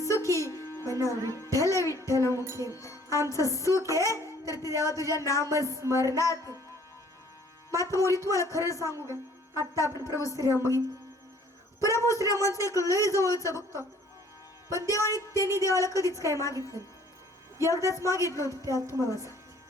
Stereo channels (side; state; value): both; normal; correlation 0.57